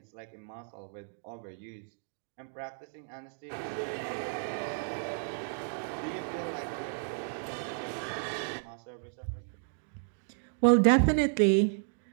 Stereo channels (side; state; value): left; silent; digital silence